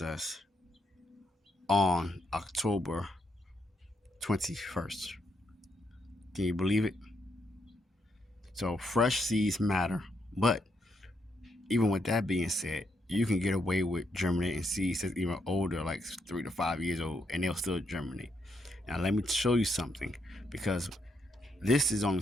on October 21st. Can you believe it? So fresh seeds matter. But even with that being said, you can get away with germinating seeds that's even older, like 3 to 5 years old, and they'll still germinate. Now, let me show you something because this is only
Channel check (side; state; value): both; normal; correlation 0.78